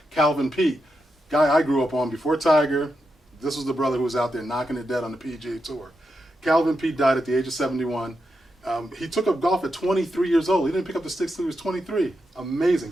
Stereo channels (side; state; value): both; normal; correlation 0.86